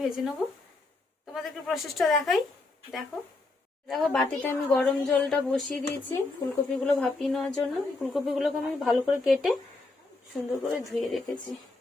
নেবো। তোমাদেরকে প্রসেসটা দেখাই, দেখো। দেখো বাটিতে আমি গরম জলটা বসিয়ে দিয়েছি ফুলকপিগুলো ভাপিয়ে নেওয়ার জন্য। ফুলকপিগুলোকে আমি ভালো করে কেটে সুন্দর করে ধুয়ে রেখেছি,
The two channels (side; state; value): right; quieter; 3.3 dB